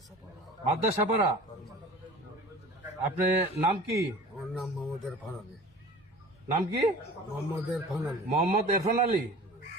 মাদ্রাসাপাড়া। আপনার নাম কি? আমার নাম মোহাম্মদ ইরফান আলী। নাম কি? মোহাম্মদ ইরফান আলী। মোহাম্মদ ইরফান আলী।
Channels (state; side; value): normal; both; correlation 0.41